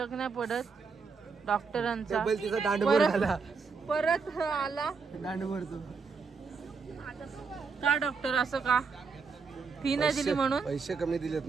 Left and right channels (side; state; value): left; quieter; 5.1 dB